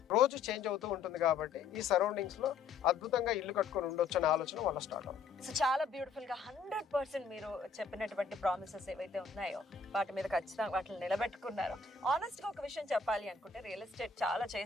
రోజు చేంజ్ అవుతూ ఉంటుంది కాబట్టి ఈ సరౌండింగ్స్ లో అద్భుతంగా ఇల్లు కట్టుకొని ఉండొచ్చు అనే ఆలోచన వాళ్ళ స్టార్ట్ అవుతుంది. సో చాలా బ్యూటిఫుల్ గా 100% మీరు చెప్పినటువంటి ప్రామిసెస్ ఏవైతే ఉన్నాయో వాటి మీద ఖచ్చితంగా వాటిని నిలబెట్టుకున్నారు. ఆనెస్ట్ గా ఒక విషయం చెప్పాలి అనుకుంటే, రియల్ ఎస్టేట్ చాలా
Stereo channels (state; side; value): quieter; right; 5.1 dB